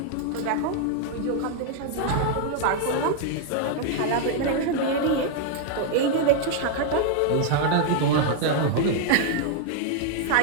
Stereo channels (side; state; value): both; different; correlation 0.00